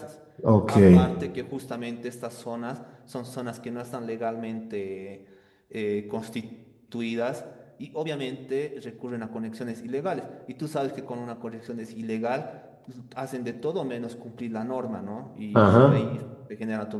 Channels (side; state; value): both; identical; correlation 1.00